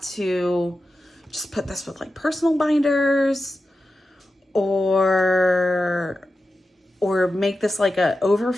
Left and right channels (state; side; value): normal; both; correlation 0.91